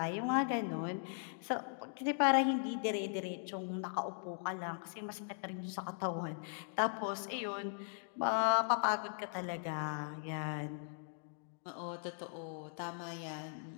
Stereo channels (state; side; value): silent; right; digital silence